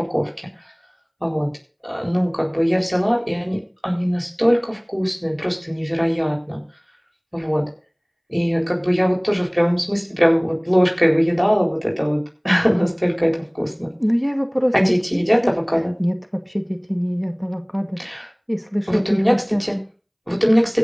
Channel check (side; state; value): both; identical; correlation 1.00